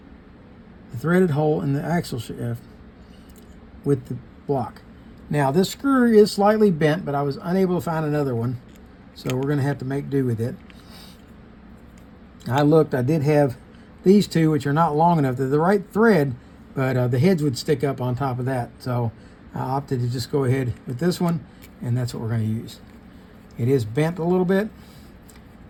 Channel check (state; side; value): identical; both; correlation 1.00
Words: the threaded hole in the axle shaft with the block. Now this screw is slightly bent, but I was unable to find another one, so we're going to have to make do with it. I looked, I did have these 2, which are not long enough. They're the right thread, but the heads would stick up on top of that. So I opted to just go ahead with this one, and that's what we're going to use. It is bent a little bit,